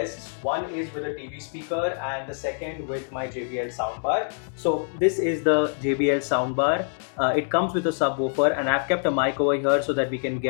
One is with a TV speaker and the second with my JBL soundbar. So this is the JBL soundbar. It comes with a subwoofer, and I've kept a mic over here so that we can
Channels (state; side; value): silent; right; 61 dB below the other